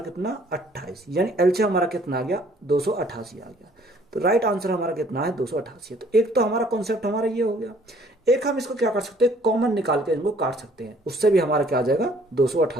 28, यानी एलसीएम हमारा कितना आ गया? 288 आ गया। तो राइट आंसर हमारा कितना है? 288। तो एक तो हमारा कॉन्सेप्ट हमारा ये हो गया। एक हम इसको क्या कर सकते हैं? कॉमन निकाल के इनको काट सकते हैं, उससे भी हमारा क्या आ जाएगा?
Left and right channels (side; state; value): both; normal; correlation 0.59